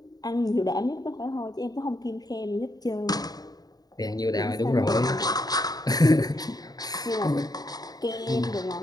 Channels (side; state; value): right; late; 0.19 ms